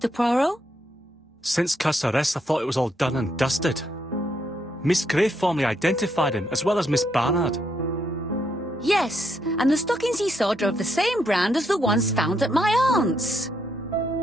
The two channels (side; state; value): both; normal; correlation 0.76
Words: Poirot? Since Cust's arrest, I thought it was all done and dusted. Miss Gray formally identified him, as well as Miss Barnard. Yes, and the stockings he sold are of the same brand as the ones found at my aunt's.